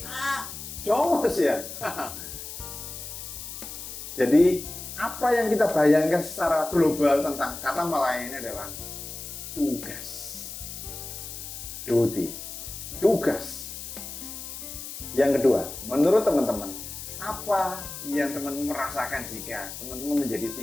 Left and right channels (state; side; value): noise; left; hiss, 9 dB below the sound